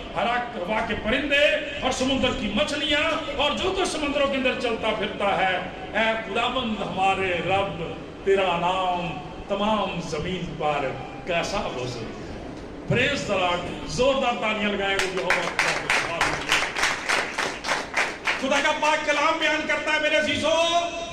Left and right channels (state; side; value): identical; both; correlation 1.00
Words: ہوا کے پرندے اور سمندر کی مچھلیاں اور جو کچھ سمندروں کے اندر چلتا پھرتا ہے، اے خداوند ہمارے رب تیرا نام تمام زمین پر کیسا بزرگ ہے۔ پریز دی لارڈ، زوردار تالیاں لگائیں گے۔ خدا کا پاک کلام بیان کرتا ہے میرے عزیزو